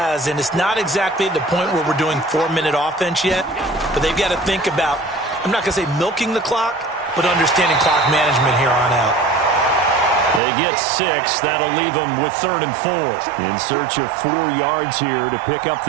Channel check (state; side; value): drops out; left; at 10.4 s